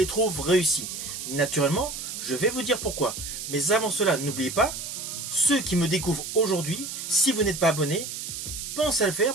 trouve réussis. Naturellement, je vais vous dire pourquoi. Mais avant cela, n'oubliez pas, ceux qui me découvrent aujourd'hui, si vous n'êtes pas abonné, pensez à le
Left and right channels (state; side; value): noise; right; hiss, 7 dB below the sound